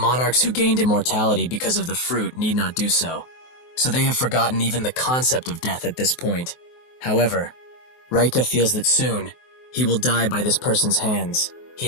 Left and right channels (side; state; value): right; late; 23 ms